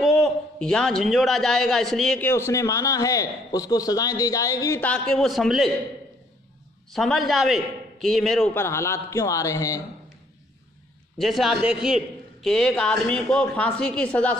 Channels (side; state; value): both; normal; correlation 0.64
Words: یہاں جھنجھوڑا جائے گا اس لیے کہ اس نے مانا ہے، اس کو سزائیں دی جائے گی تاکہ وہ سمجھ جاوے کہ یہ میرے اوپر حالات کیوں آ رہے ہیں۔ جیسے آپ دیکھیے کہ ایک آدمی کو پھانسی کی سزا